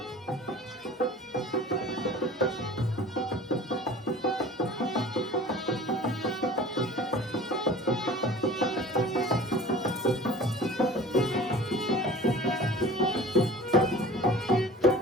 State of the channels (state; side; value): normal; both; correlation 0.43